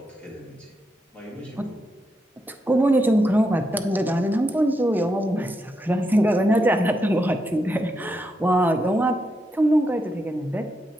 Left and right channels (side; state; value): both; normal; correlation 0.83